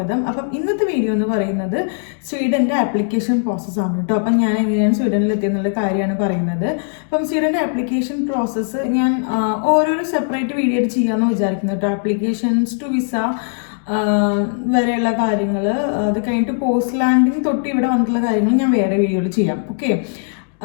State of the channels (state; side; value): silent; right; 67 dB below the other